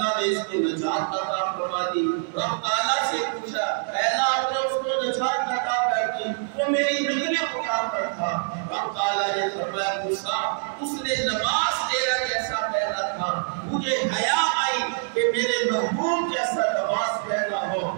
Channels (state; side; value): silent; left; digital silence